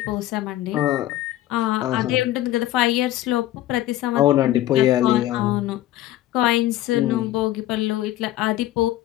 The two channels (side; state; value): right; quieter; 14.5 dB